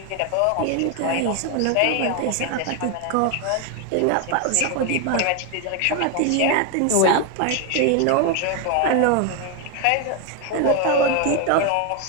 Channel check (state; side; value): different; both; correlation 0.01